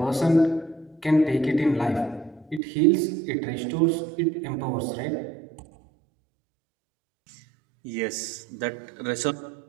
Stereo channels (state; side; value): drops out; left; at 2.6 s